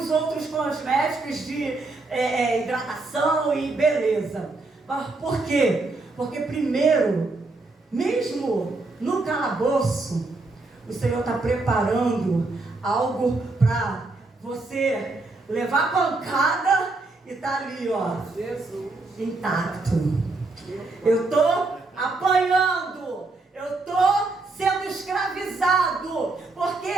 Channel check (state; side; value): quieter; left; 3.4 dB